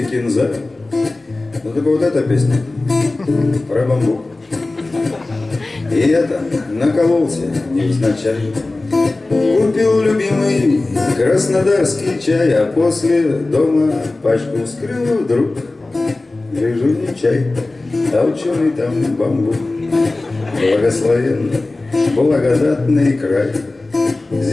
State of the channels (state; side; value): quieter; right; 3.1 dB